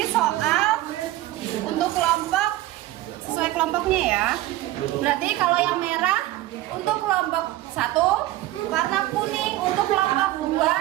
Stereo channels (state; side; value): quieter; left; 16.1 dB